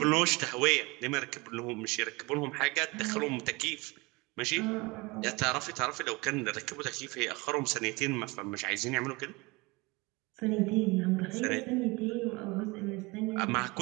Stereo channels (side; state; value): left; quieter; 24.9 dB